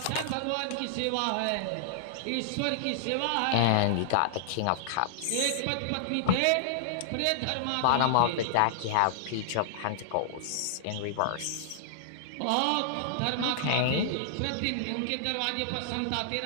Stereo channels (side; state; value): both; different; correlation -0.01